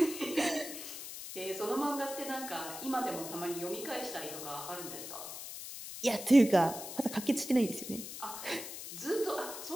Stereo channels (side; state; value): left; noise; hiss, 9 dB below the sound